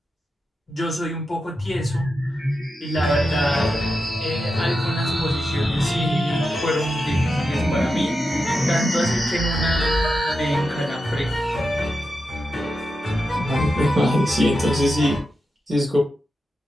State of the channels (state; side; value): normal; both; correlation 0.88